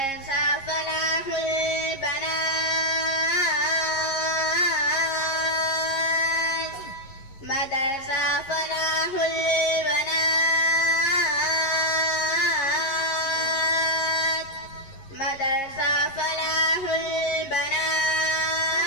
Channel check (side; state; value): right; late; 11 ms